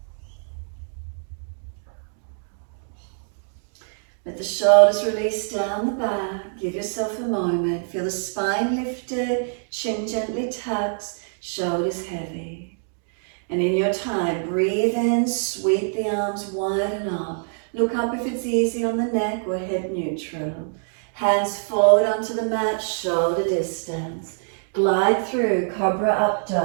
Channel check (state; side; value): silent; left; digital silence